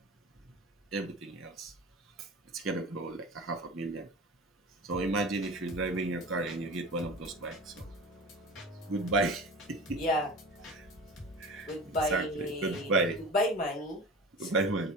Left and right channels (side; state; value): both; normal; correlation 0.34